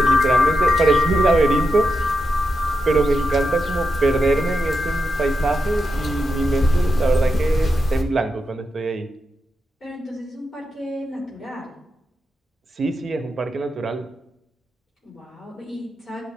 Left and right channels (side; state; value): both; normal; correlation 0.87